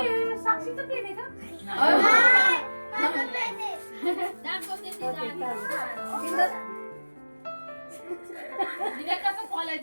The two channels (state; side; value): inverted; both; correlation -1.00